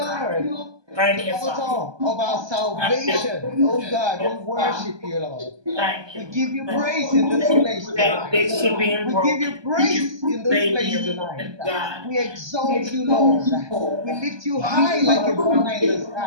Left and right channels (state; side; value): late; left; 1.2 ms